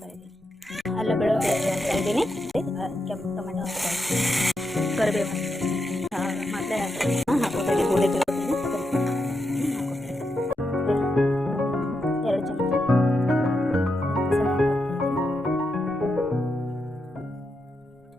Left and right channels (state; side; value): normal; both; correlation 0.84